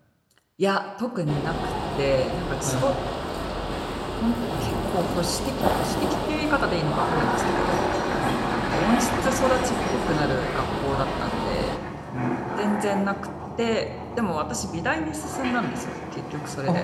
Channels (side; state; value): both; identical; correlation 1.00